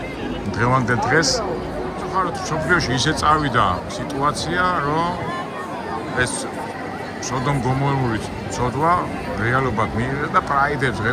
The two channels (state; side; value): identical; both; correlation 1.00